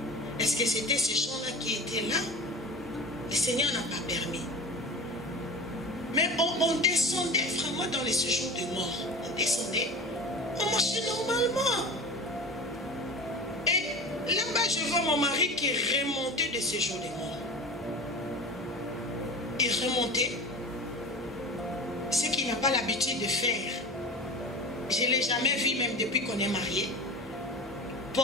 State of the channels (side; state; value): both; normal; correlation 0.33